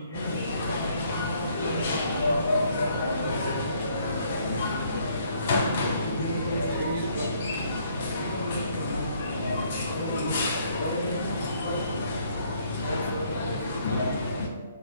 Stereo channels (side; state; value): both; inverted; correlation -0.65